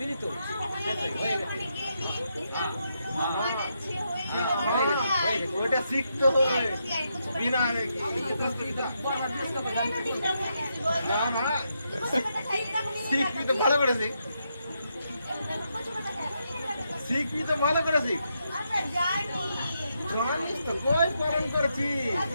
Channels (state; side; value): inverted; both; correlation -0.81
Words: তো শেষ হয়ে গেছে ওইটা শিখতে হবে বিনা না না শিখবি তো ভালো করে শিখ শিখবি তো ভালো করে শিখ জানিস তো কই পালন করছি